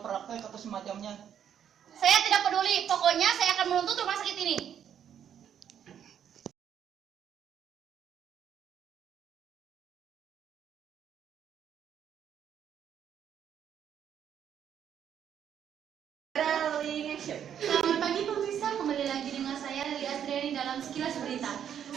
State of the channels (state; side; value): quieter; left; 9.1 dB